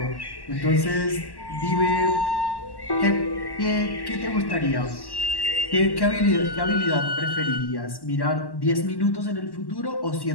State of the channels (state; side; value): late; right; 1.1 ms